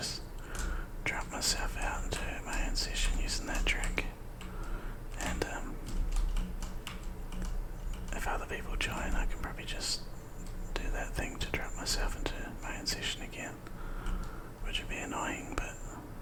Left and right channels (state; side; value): identical; both; correlation 1.00